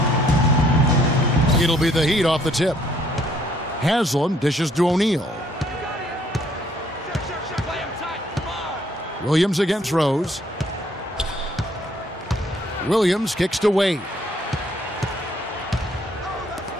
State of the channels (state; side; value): normal; both; correlation 0.64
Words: It'll be the Heat off the tip. Haslam dishes to O'Neal. Williams against Rose. Williams kicks to Wade.